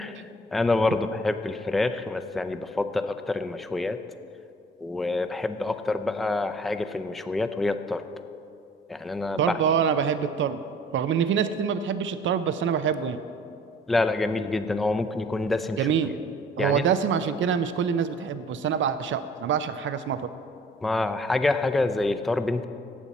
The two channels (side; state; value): both; normal; correlation 0.53